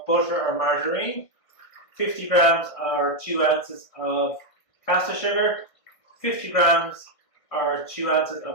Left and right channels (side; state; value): right; late; 1.5 ms